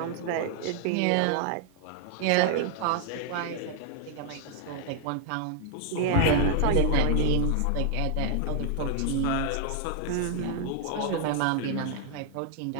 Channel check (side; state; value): both; different; correlation 0.00